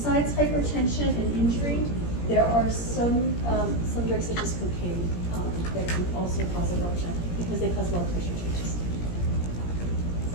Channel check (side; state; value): right; late; 17 ms